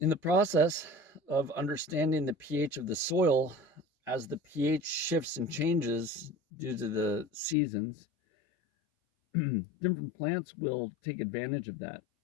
the process of understanding the pH of the soil, as the pH shifts and changes due to the seasons, different plants will take advantage of that.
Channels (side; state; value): right; drops out; at 7.6 s